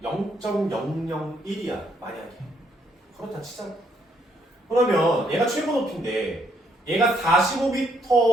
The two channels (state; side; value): normal; both; correlation 0.71